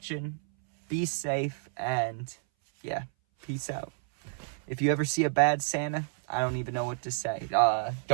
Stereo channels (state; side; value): silent; left; 58 dB below the other